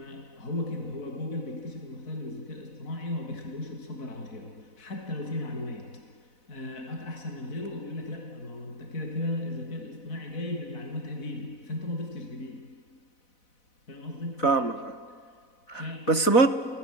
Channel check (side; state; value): right; late; 4.0 ms